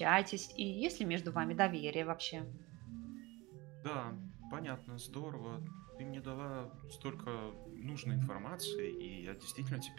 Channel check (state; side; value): quieter; left; 22.5 dB